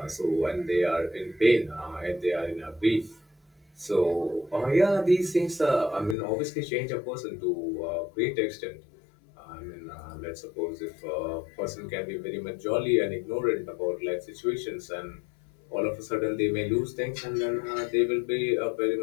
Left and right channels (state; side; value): drops out; right; at 6.2 s